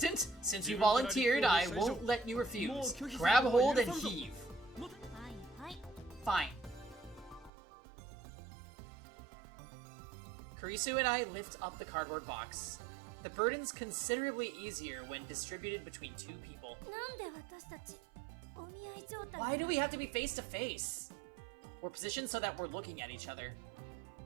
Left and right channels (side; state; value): left; drops out; at 7.5 s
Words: since you volunteered, I won't let you refuse. Grab hold and heave. はいはい。 Fine. Kurisu and I lift up the cardboard box. The burden's considerably easier when distributed between two people. なんで私たちお見合い状態 Why do we have to be face to face? We're positioned so that we're looking at each other.